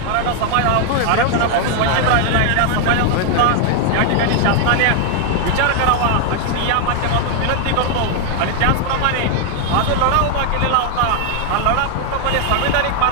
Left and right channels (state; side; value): different; both; correlation 0.00